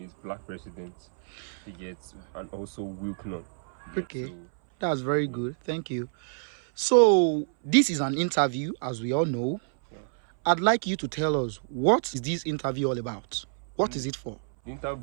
is Black President. He gets, and also WILKNUN. Okay, that's very good. Thank you. So, this is an interview, as we all know. Yeah. I'd like you to tell us, what is this interview all about? What is it for? The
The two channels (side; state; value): left; silent; 59 dB below the other